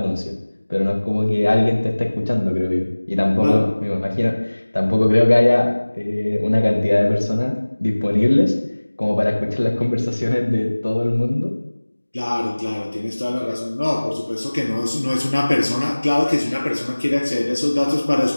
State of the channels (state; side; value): inverted; both; correlation -1.00